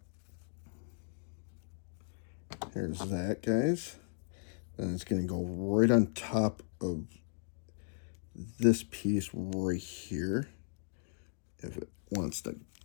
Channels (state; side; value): silent; right; digital silence